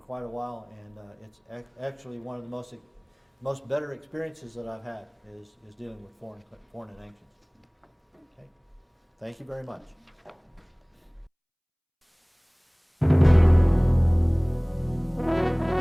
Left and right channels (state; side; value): identical; both; correlation 1.00